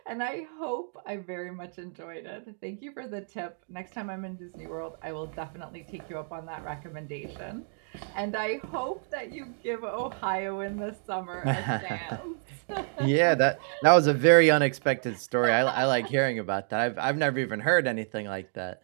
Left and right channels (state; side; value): silent; left; 58 dB below the other